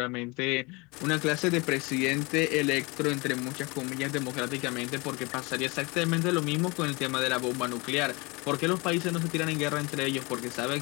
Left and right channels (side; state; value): right; quieter; 26.9 dB